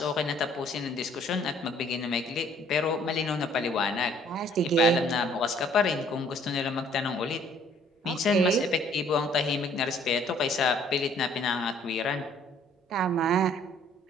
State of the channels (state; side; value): normal; both; correlation 0.60